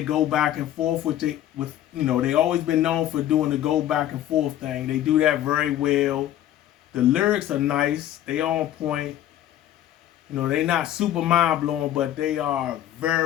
go back and forth with you know, they always been known for doing the go back and forth thing. They do that very well. The lyrics are nice. They on point. You know, they not super mind blowing, but they are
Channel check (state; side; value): quieter; right; 12.2 dB